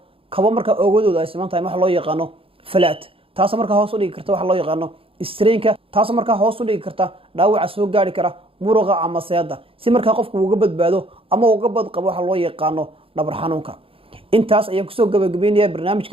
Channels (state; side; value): late; left; 0.27 ms